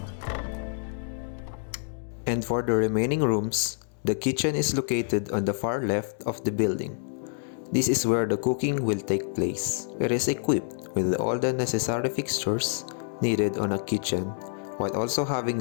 And for the remaining rooms, the kitchen is located on the far left of the building. This is where the cooking will take place. It is equipped with all the necessary fixtures needed on a kitchen, while also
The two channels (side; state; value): right; silent; digital silence